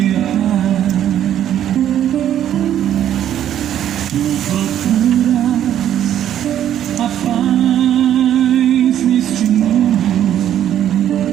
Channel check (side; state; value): left; quieter; 10.8 dB